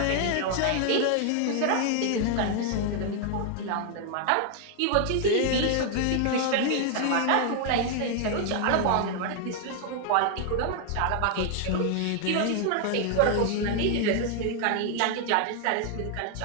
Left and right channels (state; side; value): different; both; correlation 0.00